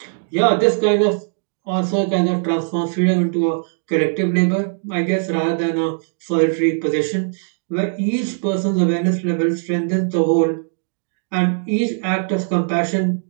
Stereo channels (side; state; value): left; silent; digital silence